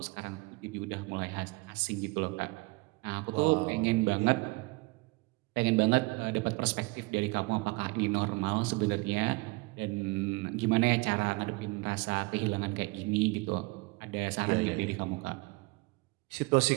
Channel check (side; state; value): left; quieter; 25.8 dB